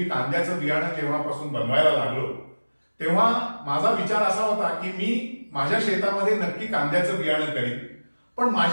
कांद्याचं बियाणं जेव्हापासून बनवायला लागलो तेव्हा माझा विचार असा होता की मी माझ्या शेतामध्ये नक्की कांद्याचं बियाणं करीन. पण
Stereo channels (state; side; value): inverted; both; correlation -1.00